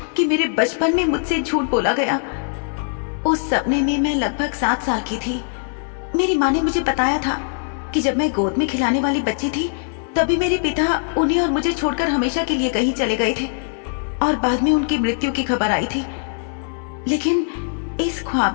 कि मेरे बचपन में मुझसे झूठ बोला गया। उस सपने में मैं लगभग 7 साल की थी। मेरी माँ ने मुझे बताया था कि जब मैं गोद में खिलाने वाली बच्ची थी तभी मेरे पिता उन्हें और मुझे छोड़कर हमेशा के लिए कहीं चले गए थे और बाद में उनकी मृत्यु की खबर आई थी। लेकिन इस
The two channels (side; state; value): right; silent; digital silence